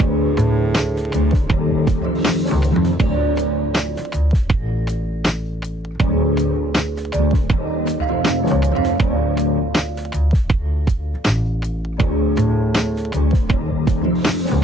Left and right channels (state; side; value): normal; both; correlation 0.69